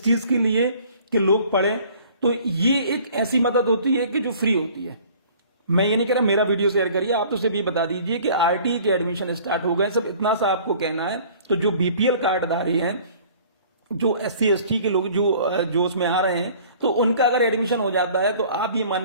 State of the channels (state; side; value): inverted; both; correlation -0.51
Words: चीज के लिए कि लोग पढ़ें, तो ये एक ऐसी मदद होती है कि जो फ्री होती है। मैं ये नहीं कह रहा मेरा वीडियो शेयर करिए, आप तो सिर्फ ये बता दीजिए कि आरटी के एडमिशन स्टार्ट हो गए, सब इतना सा आपको कहना है। तो जो बीपीएल कार्डधारी हैं, जो एससी एसटी के लोग जो उसमें आ रहे हैं, तो उनका अगर एडमिशन हो जाता है तो आप ये मान